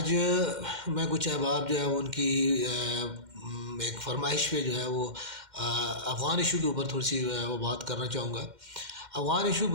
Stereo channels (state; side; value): late; left; 2.1 ms